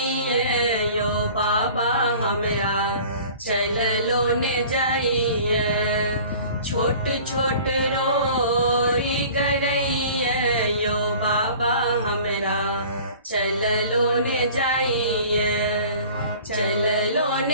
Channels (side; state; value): both; inverted; correlation -0.46